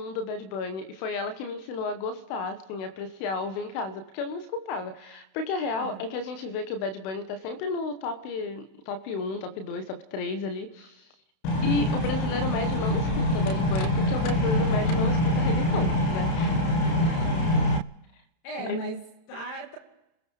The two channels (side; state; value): right; late; 31 ms